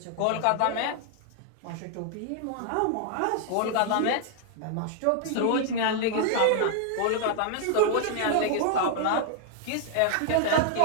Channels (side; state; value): both; different; correlation 0.00